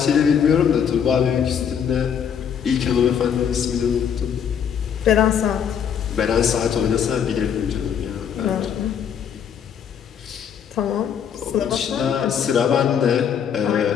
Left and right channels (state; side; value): quieter; right; 8.0 dB